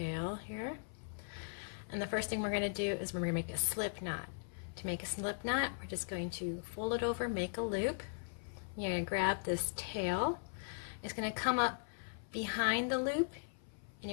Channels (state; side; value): silent; right; 52 dB below the other